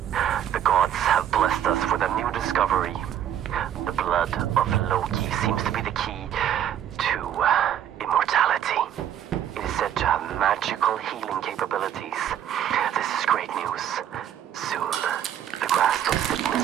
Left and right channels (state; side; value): quieter; left; 10.2 dB